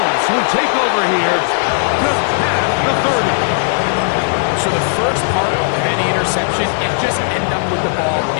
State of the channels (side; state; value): right; silent; digital silence